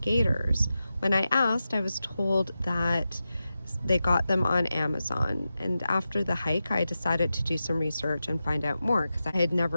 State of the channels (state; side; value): inverted; both; correlation -0.91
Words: When I asked, I was told that they got them on Amazon, and after the hike I decided to do some research and find out more because I had